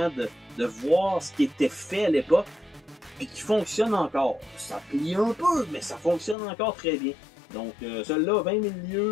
de voir ce qui était fait à l'époque et qui fonctionne encore. Ça plie un peu, mais ça fonctionne encore très bien. Donc, celui-là, 20 000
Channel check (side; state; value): right; drops out; at 6.4 s